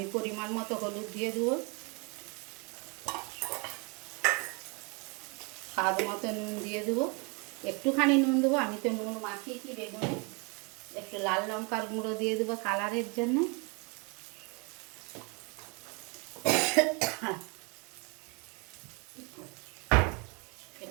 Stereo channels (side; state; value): left; quieter; 31.4 dB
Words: পরিমাণ মতো হলুদ দিয়ে দেবো, স্বাদ মতো নুন দিয়ে দেবো, একটুখানি নুন দেবো, আমি তো নুন মাখিয়েছি বেগুনে। একটু লাল লঙ্কার গুঁড়ো দিয়ে দেবো কালারের জন্য।